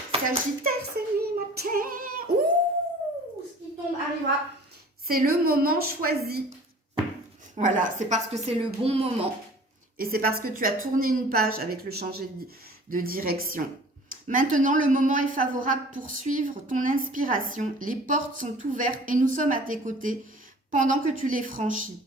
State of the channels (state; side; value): normal; both; correlation 0.46